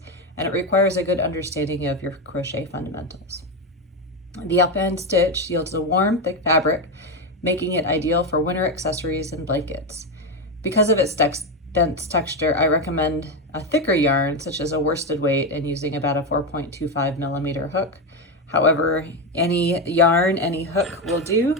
and it requires a good understanding of your crochet fundamentals. The Alpine Stitch yields a warm, thick fabric, making it ideal for winter accessories and blankets. Because of its dense texture, I recommend a thicker yarn, such as a worsted weight, and using about a 4.25 millimeter hook. However, any yarn, any hook will do.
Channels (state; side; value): normal; both; correlation 0.11